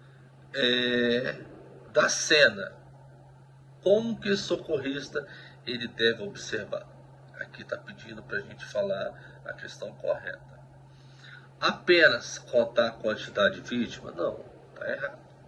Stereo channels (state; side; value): identical; both; correlation 1.00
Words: da cena, como que o socorrista ele deve observar? Aqui está pedindo para a gente falar a questão correta. Apenas contar a quantidade de vítima? Não, está errado.